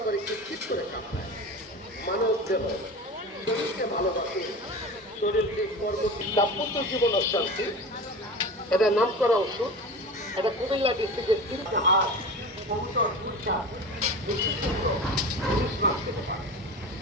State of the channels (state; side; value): normal; both; correlation 0.31